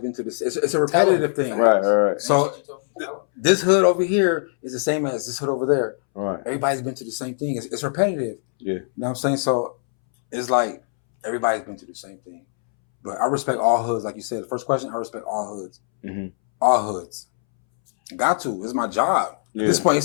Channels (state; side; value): silent; right; 64 dB below the other